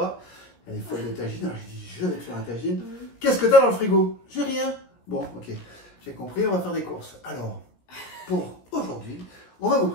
Elle est folle de tagine. Alors, j'ai dit, je vais te faire un tagine. Qu'est-ce que tu as dans le frigo? J'ai rien. Bon, ok. J'ai compris, on va faire des courses. Alors, pour aujourd'hui, on va vous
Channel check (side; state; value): right; late; 17 ms